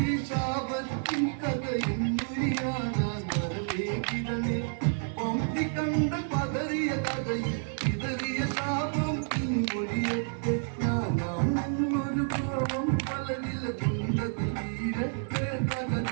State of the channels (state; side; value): silent; left; 58 dB below the other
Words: ശാപത്തിൻ കഥയും മുരിയാനാൻ വരവേ കിരണേ പമ്പി കണ്ട പതറിയ കഥയിൽ ഇതറിയ ശാപം ഇൻമൊഴിയത്തെ ഞാനാണെന്നൊരു ഭാവം പലരില കുണ്ടത്തിൽ വീരത്തെ